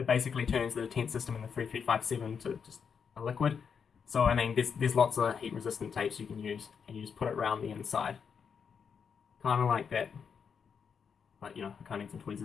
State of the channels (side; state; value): right; quieter; 6.6 dB